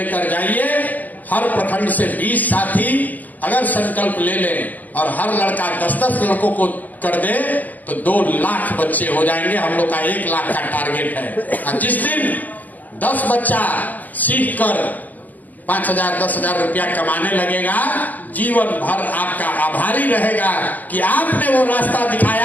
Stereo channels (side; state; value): right; late; 0.082 ms